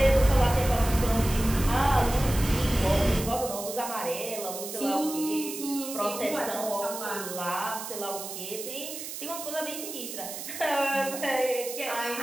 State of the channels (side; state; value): right; noise; hiss, 8 dB below the sound